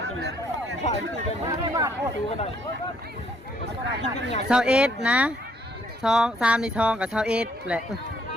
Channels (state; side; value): normal; both; correlation 0.68